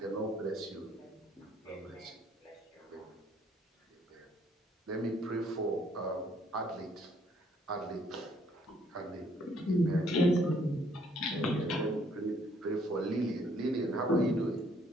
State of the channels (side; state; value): both; normal; correlation 0.65